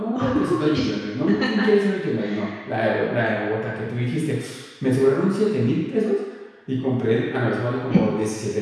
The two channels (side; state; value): both; identical; correlation 1.00